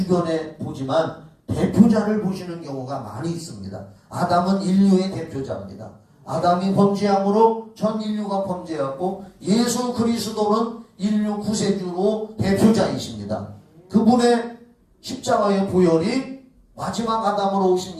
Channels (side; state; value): both; identical; correlation 1.00